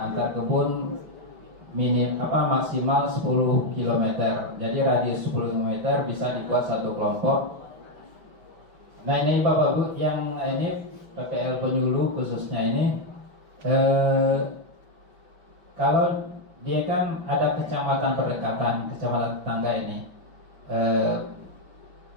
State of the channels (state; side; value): late; left; 5.6 ms